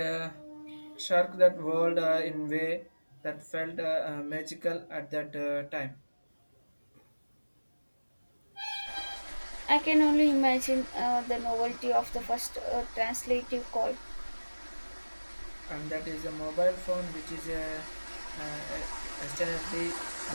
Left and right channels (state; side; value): inverted; both; correlation -1.00